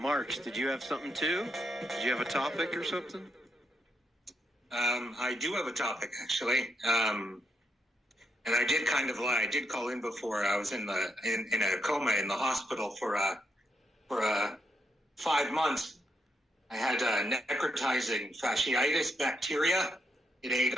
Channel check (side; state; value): both; normal; correlation 0.78